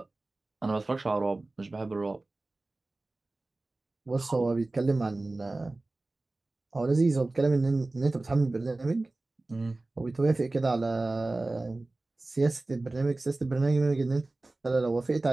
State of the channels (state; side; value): quieter; left; 3.0 dB